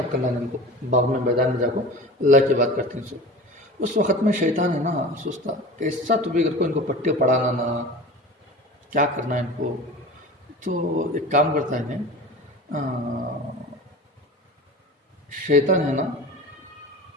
करना नहीं उनको बाग में मैदान में जाकर अल्लाह की बात करते हैं सब। उस वक़्त में शैतान है ना सोचता कैसा तो भी अगर कोई इनको पट्टे पढ़ाना ना क्या करना है इनको, तो एक काम करता है इन्हें शैतान है ना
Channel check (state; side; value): normal; both; correlation 0.35